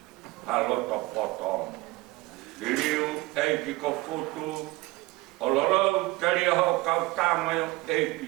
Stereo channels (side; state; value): left; quieter; 21.6 dB